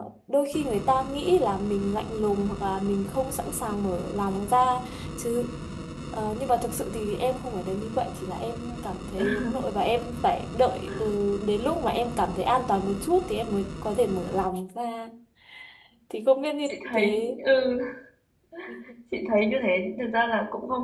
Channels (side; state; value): both; identical; correlation 1.00